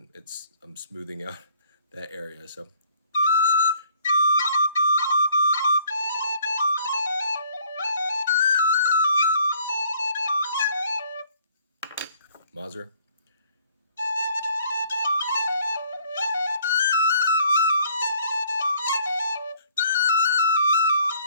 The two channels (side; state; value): both; inverted; correlation -0.61